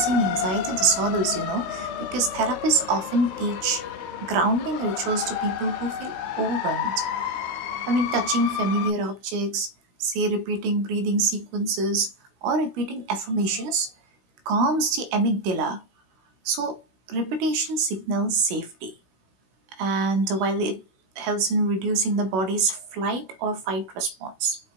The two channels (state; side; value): late; left; 16 ms